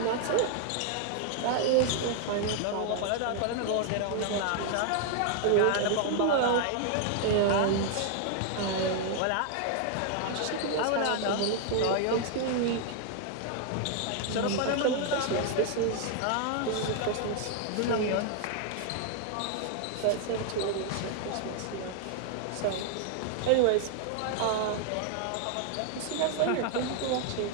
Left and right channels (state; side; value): different; both; correlation 0.00